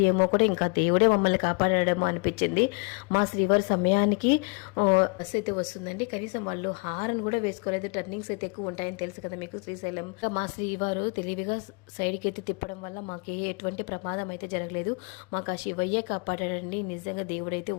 ఏమో కూడా, ఇంకా దేవుడే మమ్మల్ని కాపాడేమో అనిపించింది. మా శ్రీవారి సమయానికి బస్సు అయితే వస్తుందండి, కనీసం వాళ్ళు హారన్ కూడా వేసుకోలేదు. టర్నింగ్స్ అయితే ఎక్కువ ఉంటాయని తెలుసు కదా మీకు శ్రీశైలం. మా శ్రీవారు తెలివిగా సైడ్కి అయితే తిప్పడం వల్ల మాకు ఎటువంటి ప్రమాదం అయితే జరగలేదు. మాకు ఆ శివయ్యే కాపాడాడండి. నిజంగా దేవుడైతే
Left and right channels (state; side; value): quieter; right; 33.5 dB